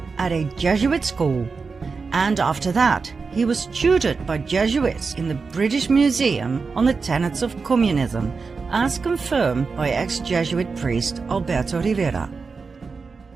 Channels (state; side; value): quieter; left; 4.7 dB